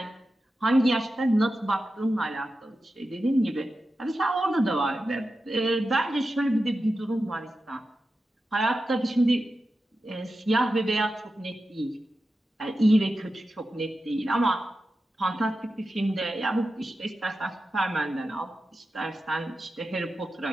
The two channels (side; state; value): both; normal; correlation 0.91